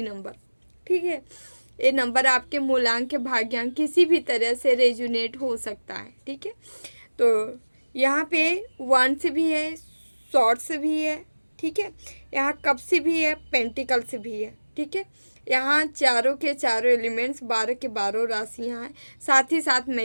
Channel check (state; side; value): inverted; both; correlation -1.00